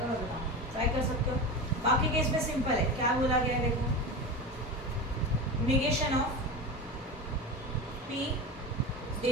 मैं बताऊँ, ट्राई कर सकते हो. बाकी केस में सिंपल है. क्या बोला गया है देखो, negation of P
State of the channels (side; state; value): both; normal; correlation 0.24